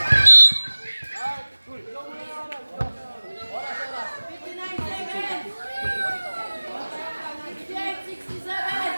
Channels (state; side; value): inverted; both; correlation -1.00